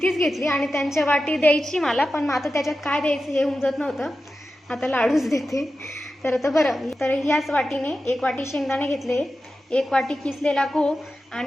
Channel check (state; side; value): normal; both; correlation 0.92